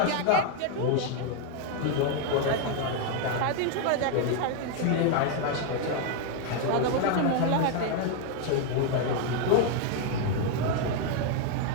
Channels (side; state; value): both; different; correlation 0.01